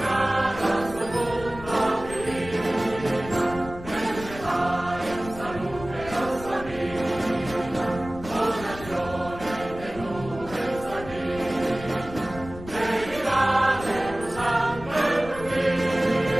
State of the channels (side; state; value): left; noise; rumble, 14 dB below the sound